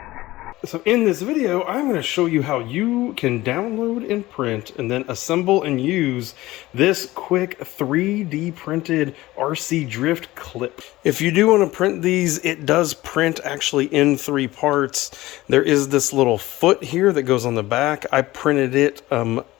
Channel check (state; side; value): quieter; right; 17.9 dB